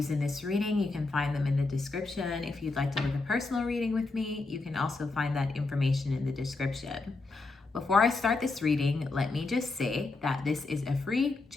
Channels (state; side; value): quieter; right; 3.5 dB